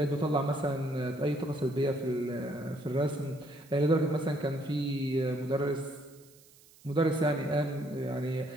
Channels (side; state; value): right; noise; hiss, 26 dB below the sound